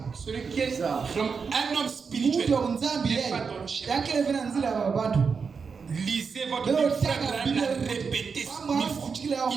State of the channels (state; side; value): quieter; left; 5.5 dB